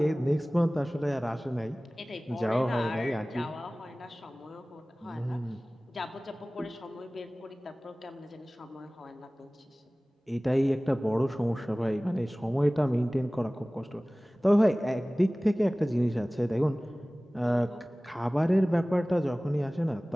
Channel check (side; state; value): both; normal; correlation 0.98